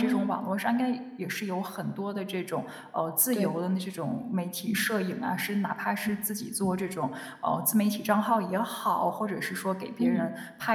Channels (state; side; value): identical; both; correlation 1.00